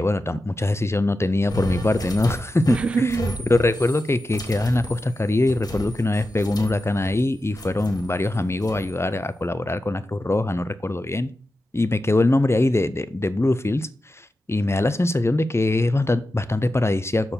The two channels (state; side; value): normal; both; correlation 0.91